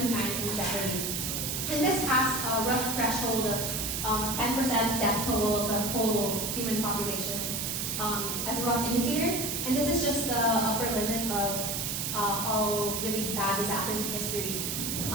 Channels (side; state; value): right; noise; hiss, 2 dB below the sound